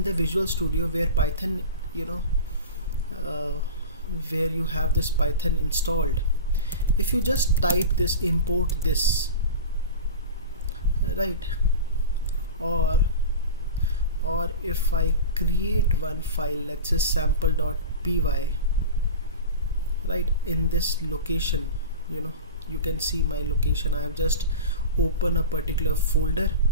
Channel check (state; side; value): inverted; both; correlation -0.30